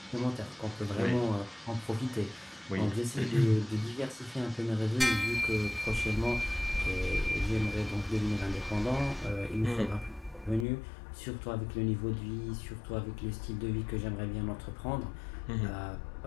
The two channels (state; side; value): drops out; right; at 10.7 s